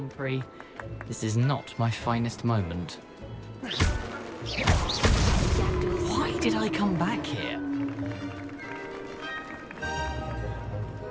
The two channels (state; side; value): identical; both; correlation 1.00